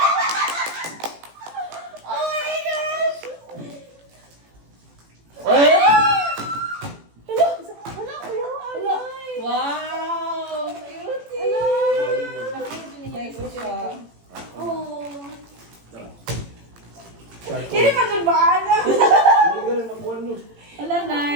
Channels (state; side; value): late; left; 18 ms